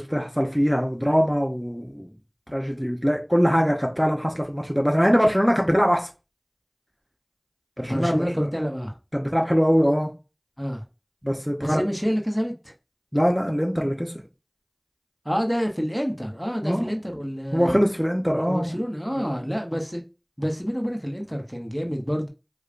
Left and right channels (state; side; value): identical; both; correlation 1.00